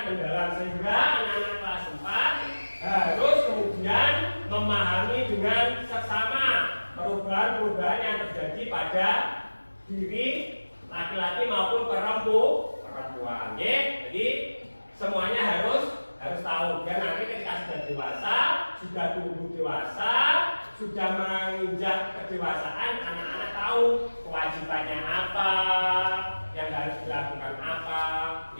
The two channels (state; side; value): inverted; both; correlation -1.00